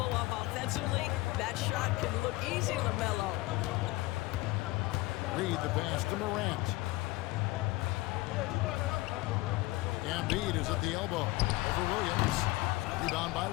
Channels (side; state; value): right; quieter; 20.2 dB